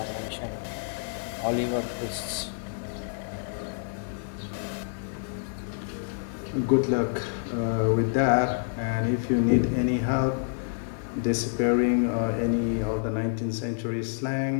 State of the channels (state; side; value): silent; right; digital silence